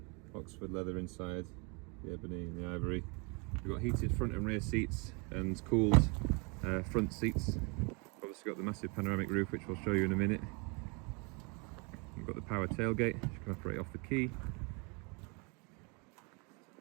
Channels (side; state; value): left; quieter; 31.7 dB